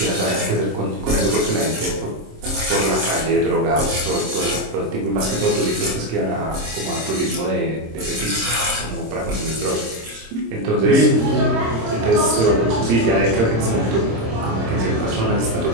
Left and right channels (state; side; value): late; left; 26 ms